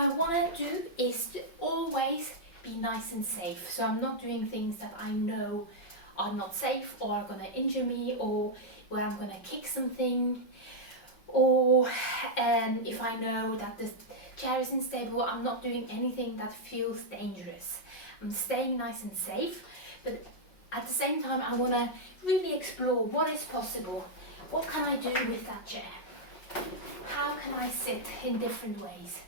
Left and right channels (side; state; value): right; late; 5.4 ms